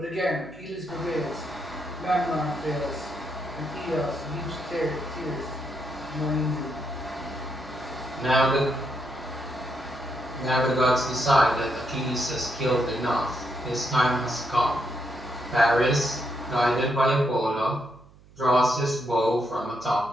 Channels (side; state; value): right; noise; hum, 25 dB below the sound